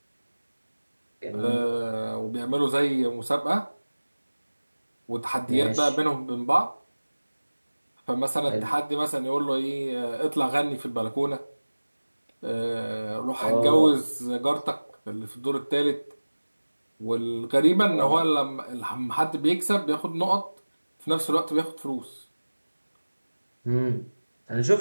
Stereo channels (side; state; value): both; inverted; correlation -1.00